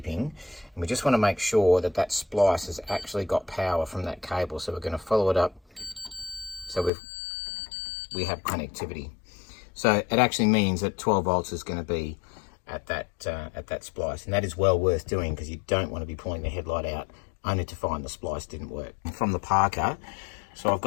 And we just want to make sure that that splice has actually got power from that cable. So we're going to follow it up so we have connectivity. So it actually means that 12 volts is going to be at that splice, and that is well worth doing because you don't want to be pulling the headlight out only to find the splice didn't work. From the Parker, so I've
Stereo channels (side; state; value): right; drops out; at 6.9 s